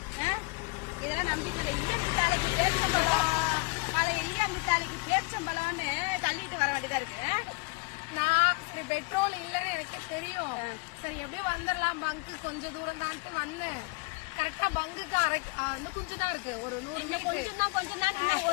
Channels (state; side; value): quieter; right; 28.1 dB